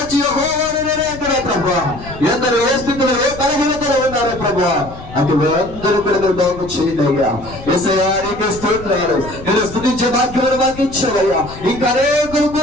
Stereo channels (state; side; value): noise; left; rumble, 15 dB below the sound